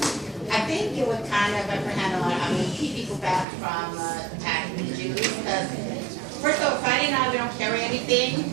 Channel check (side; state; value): left; drops out; at 3.5 s